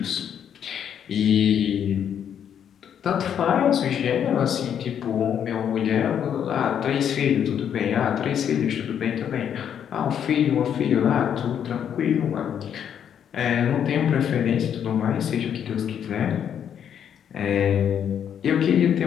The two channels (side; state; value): right; quieter; 8.8 dB